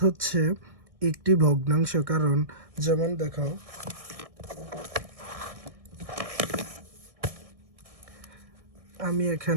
হচ্ছে একটি ভগ্নাংশ। কারণ যেমন দেখো, আমি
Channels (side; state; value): left; late; 1.6 ms